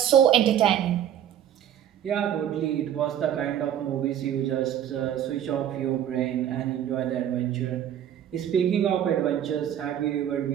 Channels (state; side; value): quieter; left; 10.4 dB